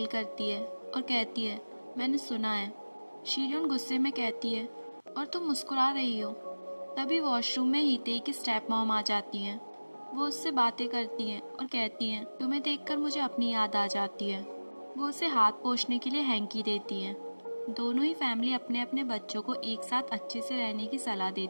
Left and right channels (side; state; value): both; inverted; correlation -1.00